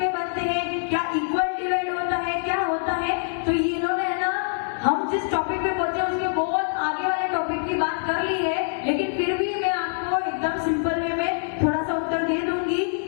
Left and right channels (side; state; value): right; silent; digital silence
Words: बनते हैं? क्या इक्वल डिवाइड होता है? क्या होता है? तो ये इन्होंने है ना, हम जिस टॉपिक पे बोलते हैं उसके बहुत आगे वाले टॉपिक की बात कर ली है, लेकिन फिर भी मैं आपको एकदम सिंपल वे में थोड़ा सा उत्तर दे दूंगी